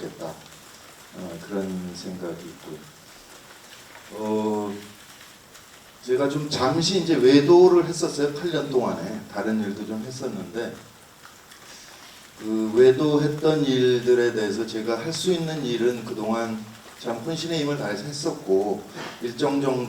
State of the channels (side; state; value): both; identical; correlation 1.00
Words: 그런 생각이 있고요. 제가 좀 잠시 이제 외도를 했었어요. 8년 동안에 다른 일도 좀 했었는데 그 외도했던 일들에 대해서 제가 할 수 있는 일은 그동안 참 혼신의 힘을 다해서 했었고 일정